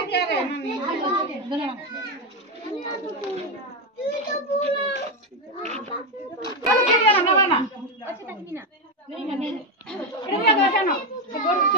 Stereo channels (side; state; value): both; normal; correlation 0.08